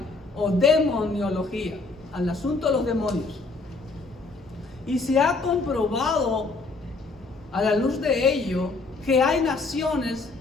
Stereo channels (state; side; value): quieter; right; 3.7 dB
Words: o demoniología, al asunto de los demonios. Y se ha comprobado a la luz de ello que hay naciones